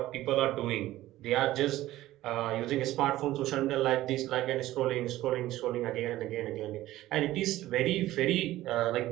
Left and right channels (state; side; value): quieter; left; 15.6 dB